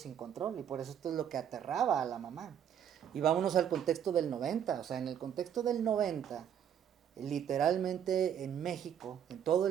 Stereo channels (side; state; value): left; quieter; 9.1 dB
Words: control? Y por eso esto es lo que aterraba a la mamá. Y vámonos al contexto del 90, o sea, en el contexto del 90, literalmente en México, en todo